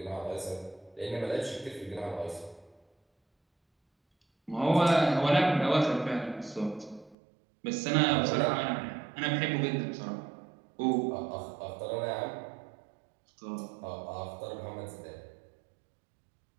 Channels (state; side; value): drops out; left; at 7.2 s